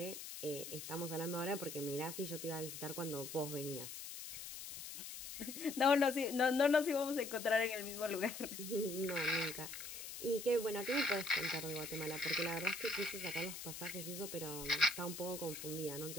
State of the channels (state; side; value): noise; left; hiss, 9 dB below the sound